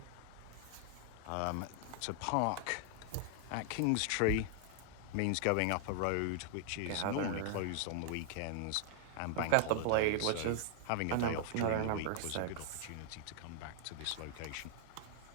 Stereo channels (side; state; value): both; different; correlation 0.00